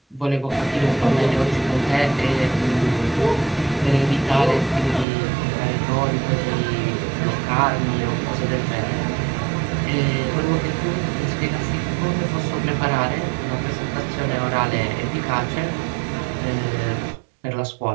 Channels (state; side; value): drops out; left; at 5.1 s